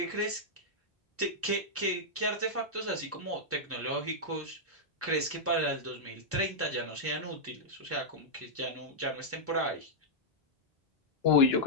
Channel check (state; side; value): normal; both; correlation -0.08